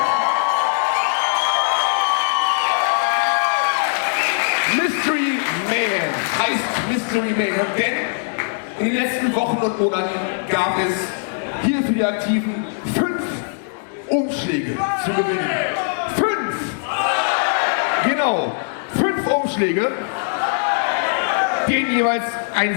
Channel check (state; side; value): silent; right; digital silence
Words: MysteryMayhem heißt MysteryMayhem, denn in den letzten Wochen und Monaten gab es hier für die Aktiven 5 Umschläge zu gewinnen. 5! Genau, 5 Umschläge, den jeweils